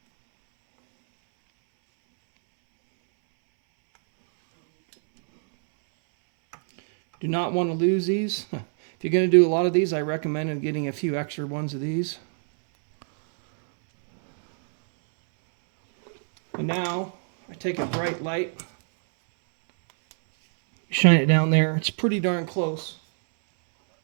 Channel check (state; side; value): silent; left; 63 dB below the other